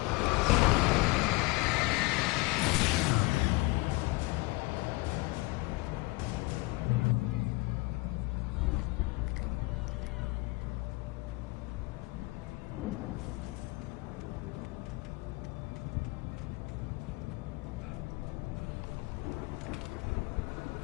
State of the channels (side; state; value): right; quieter; 23.9 dB